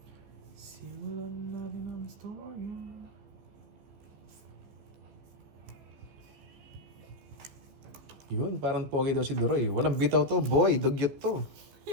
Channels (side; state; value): left; late; 15 ms